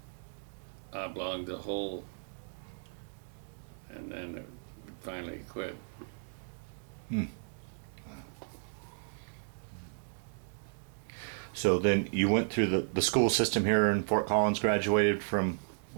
the hole, and then it would finally quit. Hmm. So then you went through the school system here in Fort Collins, graduated from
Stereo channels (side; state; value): left; silent; digital silence